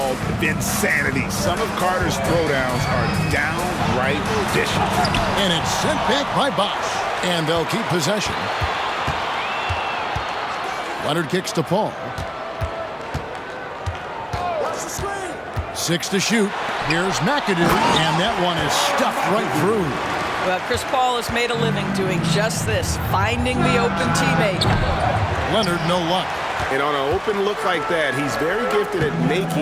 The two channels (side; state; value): both; identical; correlation 1.00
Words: Vinsanity. Some of Carter's throwdowns are downright vicious. And it's sent back by Bosch. And they'll keep possession. Leonard kicks to Paul. 6 to shoot. Here's McAdoo, and that one is stuffed right through. Well, Chris Paul has made a living doing just this, finding the open teammate. Leonard, no luck. And on an open look like that, he's very gifted at